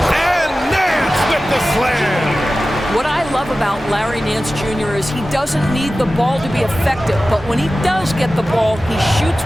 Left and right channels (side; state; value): both; normal; correlation 0.95